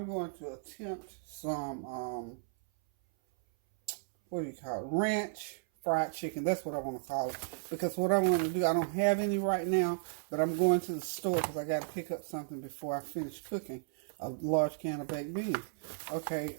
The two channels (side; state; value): left; silent; 55 dB below the other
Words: going to attempt some, what do you call it? Ranch fried chicken. That's what I want to call it. Because what I want to do, I don't have any right now, but I'm going to the store because I got to pick up something before I finish cooking a large can of baked beans. Okay,